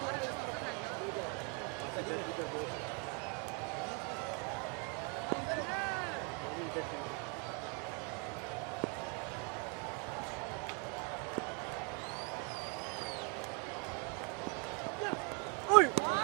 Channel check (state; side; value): quieter; left; 33.0 dB